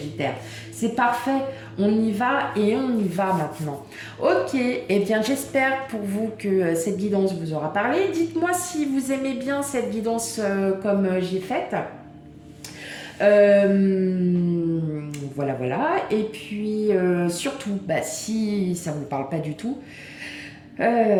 C'est parfait, on y va et on y va maintenant. Ok, eh bien j'espère pour vous que cette guidance vous aura parlé. Dites-moi si vous aimez bien cette guidance comme j'ai faite. Voilà. Et puis, surtout, si ça ne vous parle pas du tout,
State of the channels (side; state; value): both; identical; correlation 1.00